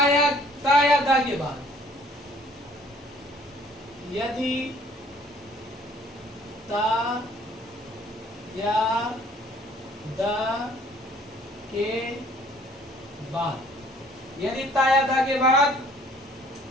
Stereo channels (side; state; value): both; normal; correlation 0.57